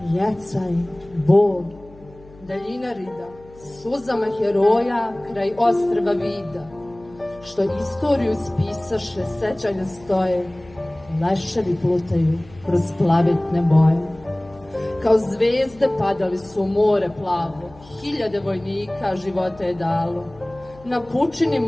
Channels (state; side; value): noise; left; hum, 23 dB below the sound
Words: jecaj, bol, daljina rida, suzama heroja kraj ostrva vida, što istoriju spisaše, sećanja stoje, leševi plutaju kroz plavetne boje. Kao zvezde padali su u more plavo, hiljade vojnika života je dalo. Na pučini